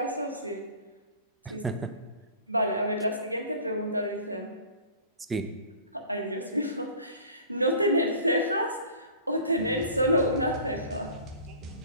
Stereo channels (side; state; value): both; inverted; correlation -0.45